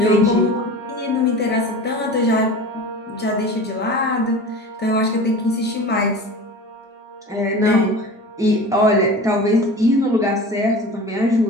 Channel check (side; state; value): both; normal; correlation 0.35